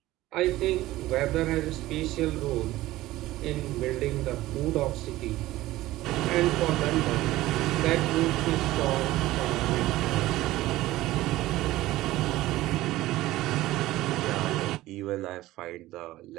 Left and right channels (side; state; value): left; quieter; 16.7 dB